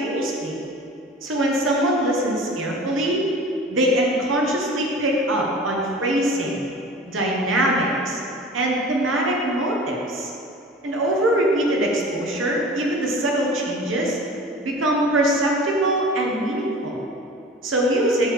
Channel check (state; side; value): normal; both; correlation 0.40